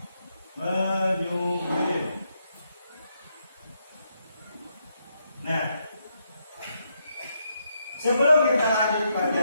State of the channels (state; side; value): inverted; both; correlation -0.79